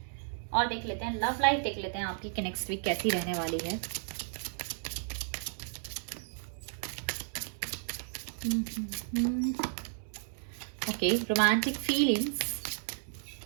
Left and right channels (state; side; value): silent; left; 56 dB below the other